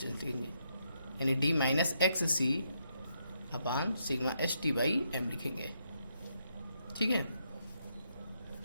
लिखेंगे, यानी d minus x C upon sigma S T by m लिखेंगे। ठीक है,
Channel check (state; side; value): inverted; both; correlation -0.77